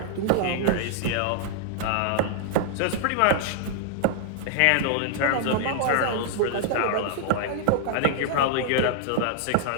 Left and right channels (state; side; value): different; both; correlation -0.01